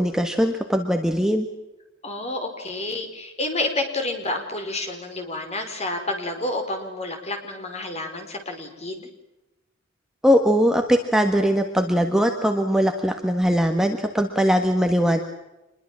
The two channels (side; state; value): both; normal; correlation 0.75